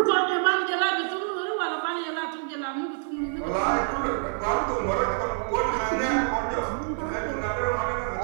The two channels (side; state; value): left; silent; 56 dB below the other